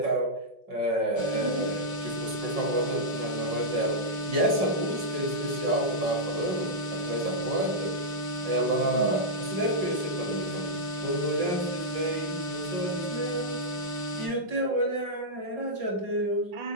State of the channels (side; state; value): left; late; 5.4 ms